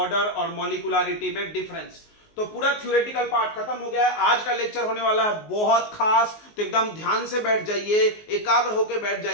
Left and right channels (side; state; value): right; late; 19 ms